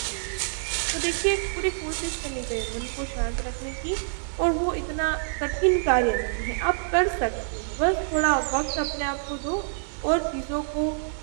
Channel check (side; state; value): left; silent; digital silence